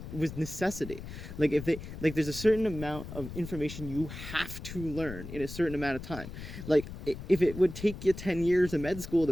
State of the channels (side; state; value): left; noise; rumble, 10 dB below the sound